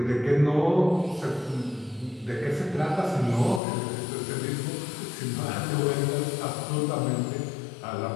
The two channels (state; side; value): drops out; right; at 3.6 s